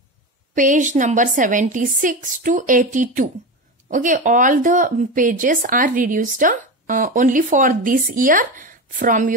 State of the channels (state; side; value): normal; both; correlation 0.21